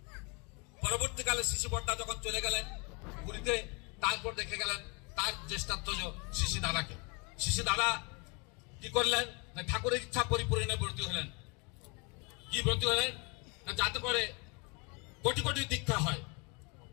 পরবর্তীকালে শ্রী বড়দা যখন চলে গেলেন পুরীতে, তারপর দেখে গেলেন তার জ্যেষ্ঠাত্মজ শ্রী দাদাকে। শ্রী দাদা কি করলেন না, ঠাকুরের ইচ্ছা পরিপূরণে ব্রতী হলেন। কি ব্রতী হলেন না, যাতে করে কোটি কোটি দীক্ষা হয়।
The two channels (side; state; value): right; quieter; 31.8 dB